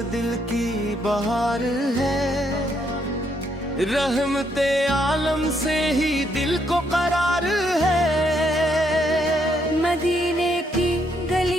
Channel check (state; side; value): normal; both; correlation 0.74